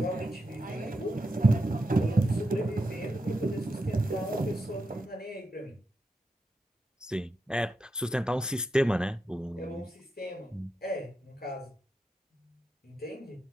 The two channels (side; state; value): both; normal; correlation 0.86